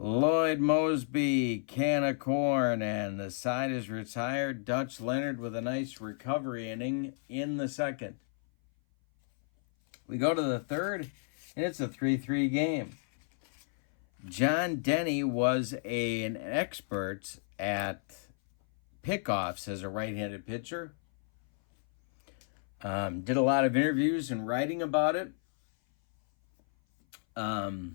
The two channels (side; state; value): right; silent; 57 dB below the other